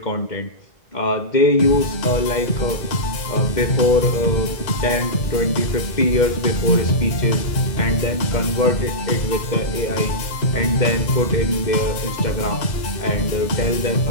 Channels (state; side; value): late; right; 2.0 ms